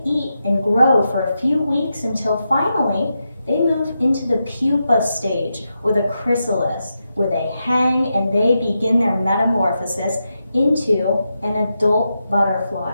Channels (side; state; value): both; inverted; correlation -0.87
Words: eat and grow for a few weeks until finally they move into the pupa stage or the chrysalis, where they hang and they begin their metamorphosis into an adult butterfly.